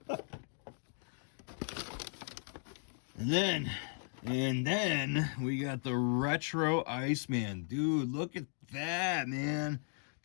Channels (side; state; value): right; silent; 53 dB below the other